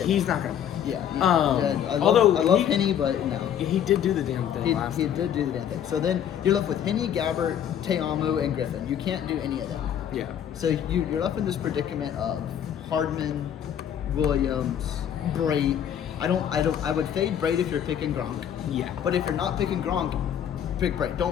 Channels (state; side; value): quieter; right; 9.5 dB